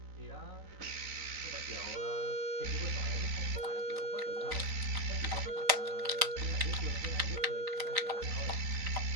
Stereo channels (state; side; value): late; left; 3.9 ms